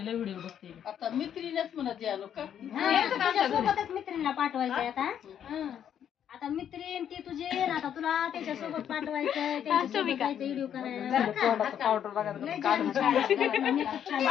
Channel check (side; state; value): right; quieter; 9.3 dB